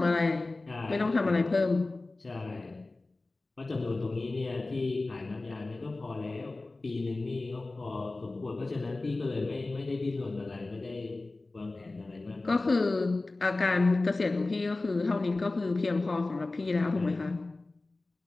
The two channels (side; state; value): right; quieter; 3.2 dB